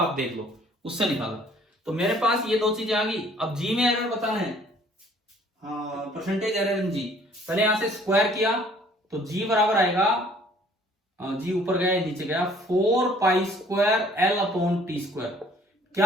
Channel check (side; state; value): both; normal; correlation 0.56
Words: आप देख लो, उससे निकाला। तो मेरे पास ये दो चीजें आ गई। अब जी में एरर बताना है, हाँ परसेंटेज एरर इन जी। पहले यहां से स्क्वायर किया तो जी बराबर आएगा, जी ऊपर गया नीचे गया 4π² L/T²।